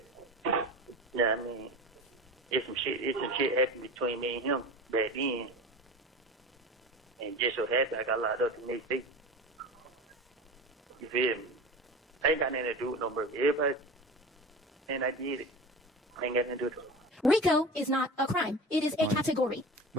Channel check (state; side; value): normal; both; correlation 0.31